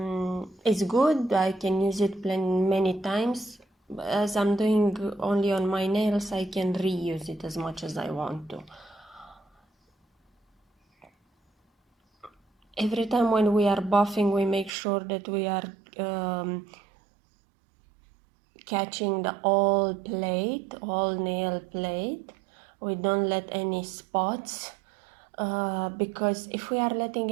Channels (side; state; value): left; drops out; at 14.7 s